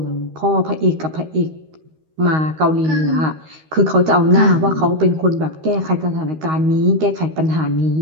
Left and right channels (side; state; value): left; late; 13 ms